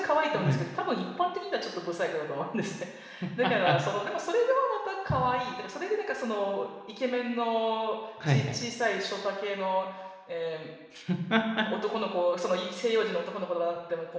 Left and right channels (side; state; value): both; identical; correlation 1.00